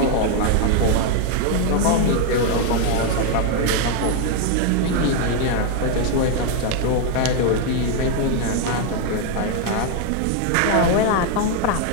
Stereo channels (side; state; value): both; different; correlation 0.01